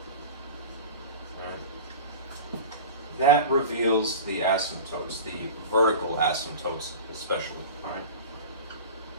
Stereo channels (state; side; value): inverted; both; correlation -0.34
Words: that reveals the asymptotes, the vertical asymptotes especially, all right?